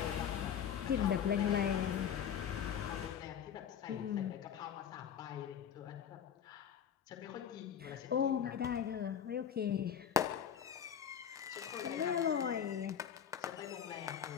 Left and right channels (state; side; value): quieter; right; 8.7 dB